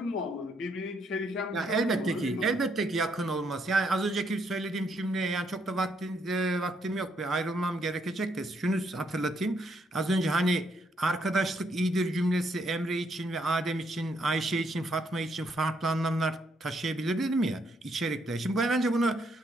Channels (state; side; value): normal; both; correlation 0.73